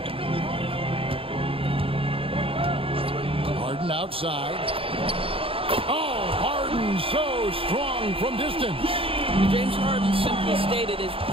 Harden outside. Oh, Harden so strong from distance. James Harden, simply stated, is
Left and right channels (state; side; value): late; left; 0.27 ms